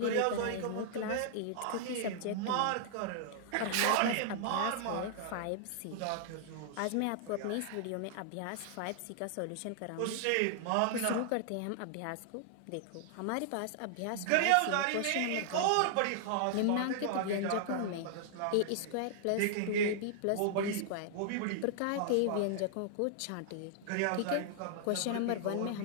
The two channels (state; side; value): different; both; correlation -0.01